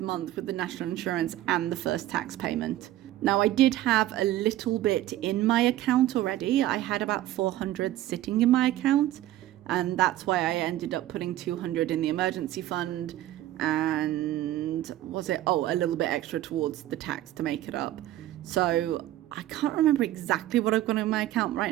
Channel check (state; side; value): quieter; left; 14.3 dB